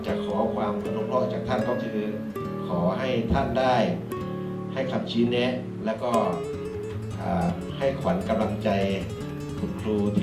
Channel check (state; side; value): identical; both; correlation 1.00